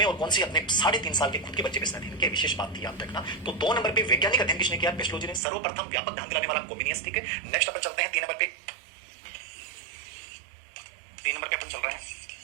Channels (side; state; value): left; drops out; at 5.4 s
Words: और कौन सी? अपने 3.5 साल के खुद के बच्चे में अध्ययन किया। विशेष बात थी, याद रखना। तो 2 नंबर पे वैज्ञानिक अध्ययन किसने किया? पेस्टोलॉजी ने। सर्वप्रथम व्यापक ध्यान दिलाने वाला कोमिनियस। ठीक है, नेक्स्ट अपन चलते हैं 3 नंबर पे। 3 नंबर पे अपन चल रहे हैं।